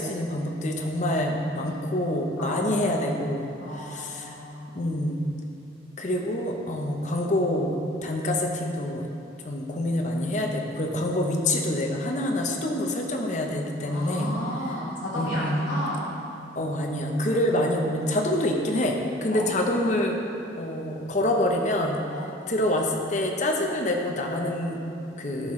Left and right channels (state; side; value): normal; both; correlation 0.47